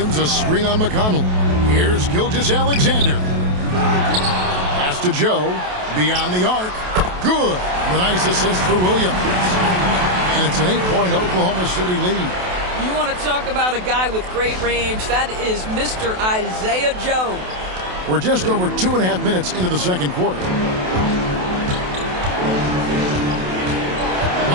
a screen on McConnell. Here's Gilgeous-Alexander. Pass to Joe. Beyond the arc. Good. The nice assist for Williams. And it's an 8-point Oklahoma City lead. You want to talk about a guy with great range. That is Mr. Isaiah Joe. We're just over 2.5 minutes into the second quarter.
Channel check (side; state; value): left; late; 28 ms